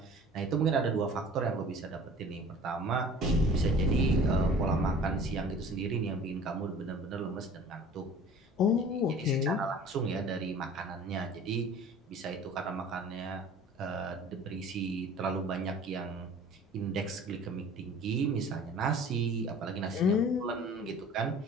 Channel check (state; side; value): normal; both; correlation 0.46